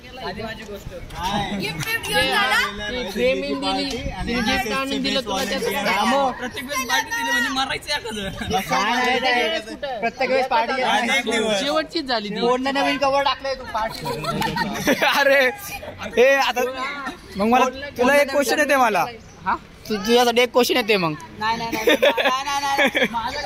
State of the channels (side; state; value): both; identical; correlation 1.00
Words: आधी माझी गोष्ट गिफ्ट घेऊन झाला फ्रेमिंग दिली आणि गिफ्ट आणून दिलं तुला त्याचं प्रत्येक वेळेस पार्टी दिली म्हणजे मारायचं एखादं प्रत्येक वेळेस पार्टी शेवटचीच झाली ती. कोणला नवीन कवर टाकलंय तू पार्टी. अरे हे आता मग मला तुला एक क्वेश्चन येते मला. हा तुझ्यासाठी एक क्वेश्चन येते मग.